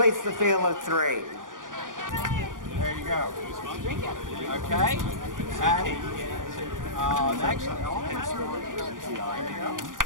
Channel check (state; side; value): late; left; 0.89 ms